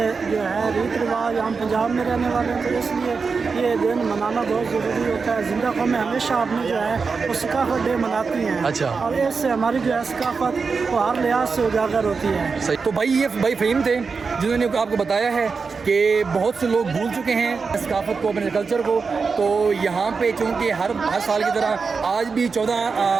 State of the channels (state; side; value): quieter; left; 4.9 dB